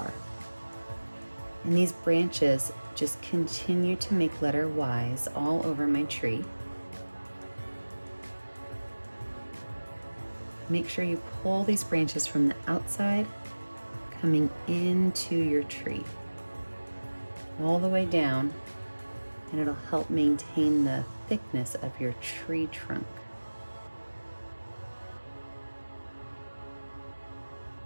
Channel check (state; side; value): inverted; both; correlation -1.00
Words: And these branches just continue to make letter Ys all over my tree. Make sure you pull these branches from the outside, coming into your tree, all the way down, and it'll help maintain the thickness of your tree trunk.